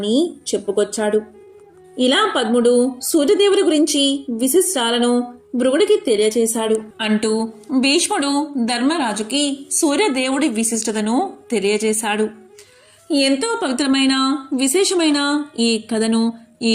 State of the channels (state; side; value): identical; both; correlation 1.00